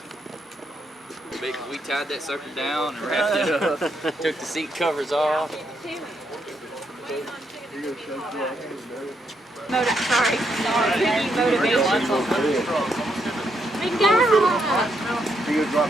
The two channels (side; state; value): both; normal; correlation 0.78